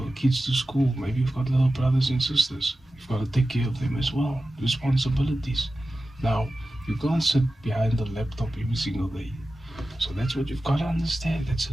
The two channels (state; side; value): normal; both; correlation 0.94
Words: kids to school. Maybe you've got little brothers and sisters. You've got to take care of them as well. Responsibilities. Now you can't sit behind the laptop every single day. So that's what you've got to understand. That's